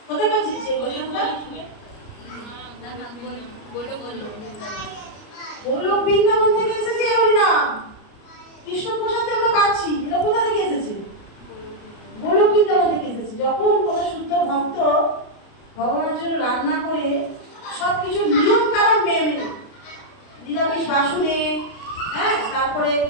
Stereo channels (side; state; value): right; late; 33 ms